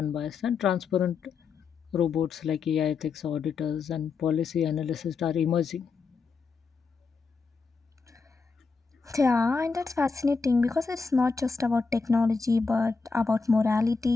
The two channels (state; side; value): quieter; right; 4.7 dB